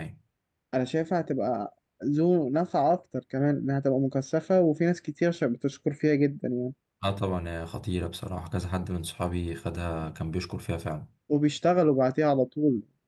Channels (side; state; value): both; identical; correlation 1.00